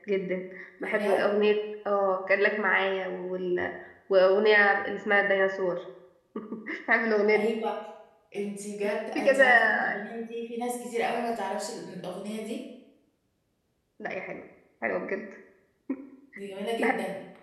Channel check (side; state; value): both; identical; correlation 1.00